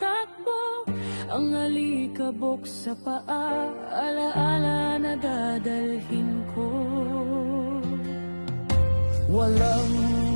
Ang alikabok sa paa, alaala na dadalhin ko. Walang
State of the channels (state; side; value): inverted; both; correlation -1.00